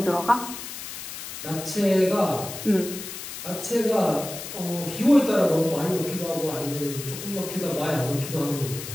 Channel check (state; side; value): noise; left; hiss, 9 dB below the sound